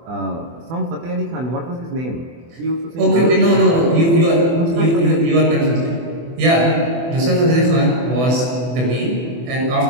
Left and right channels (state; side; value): late; left; 24 ms